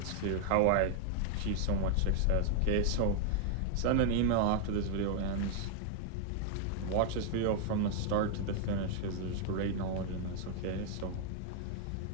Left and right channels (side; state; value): both; different; correlation 0.00